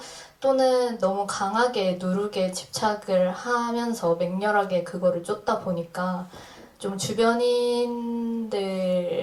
또는 너무 강하게 누룩에 집착을 하면서 맹렬하게 그거를 쫓다 보니까 좀 주변인들을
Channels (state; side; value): identical; both; correlation 1.00